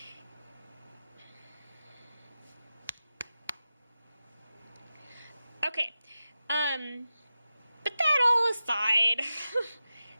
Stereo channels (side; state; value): both; inverted; correlation -0.92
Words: Okay. But that all aside,